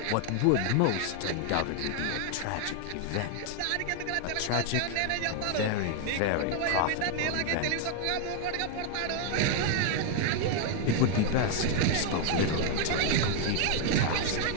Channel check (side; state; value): both; different; correlation 0.00